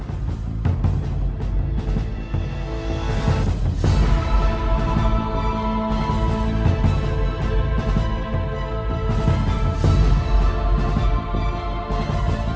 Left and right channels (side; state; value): both; identical; correlation 1.00